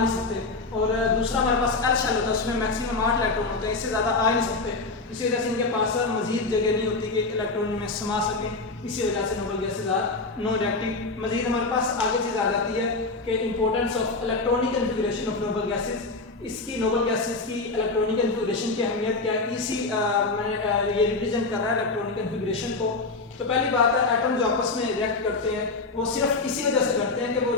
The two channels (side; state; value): right; quieter; 3.6 dB